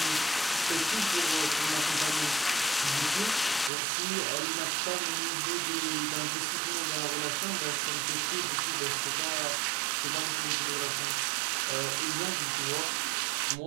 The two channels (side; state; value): left; drops out; at 3.7 s